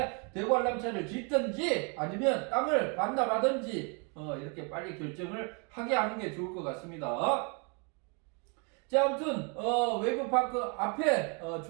대관람차를 짓든지 아니면 땅을 반납하든지 이렇게 빨리 결정을 하게 하는 게 좋을 것 같습니다. 자, 아무튼 웨이브파크 앞에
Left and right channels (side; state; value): left; quieter; 35.3 dB